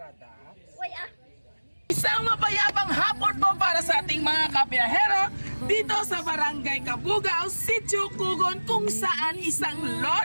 Uy ah! Isang mapayapang hapon po para sa ating mga kabiyahero dito sa Barangay Kabugao, Sitio Kugon, kung saan isang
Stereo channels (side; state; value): both; inverted; correlation -1.00